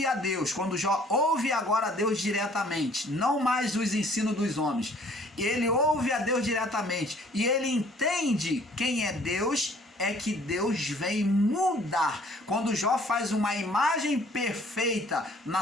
a Deus, quando Jó ouve agora a Deus diretamente, não mais os ensinos dos homens, ele ouve a Deus diretamente e ele entende quem é Deus, é que Deus vem mudar. Quando Jó faz uma imagem perfeita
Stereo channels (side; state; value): both; normal; correlation 0.57